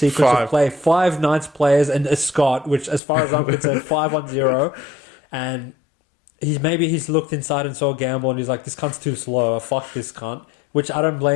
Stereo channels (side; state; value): right; drops out; at 3.0 s